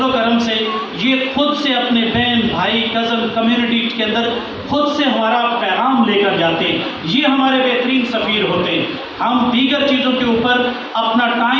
و کرم سے یہ خود سے اپنے بہن بھائی کزن کمیونٹی کے اندر خود سے ہمارا پیغام لے کر جاتے ہیں، یہ ہمارے بہترین سفیر ہوتے ہیں۔ ہم دیگر چیزوں کے اوپر اپنا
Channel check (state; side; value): identical; both; correlation 1.00